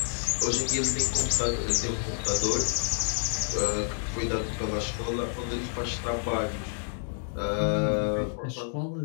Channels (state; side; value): silent; right; digital silence